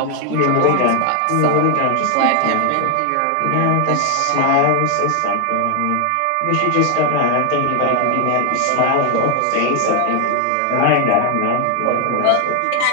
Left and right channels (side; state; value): both; different; correlation 0.00